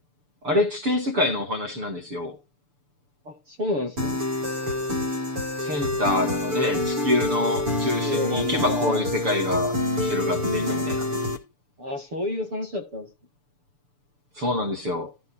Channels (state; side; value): late; left; 6.9 ms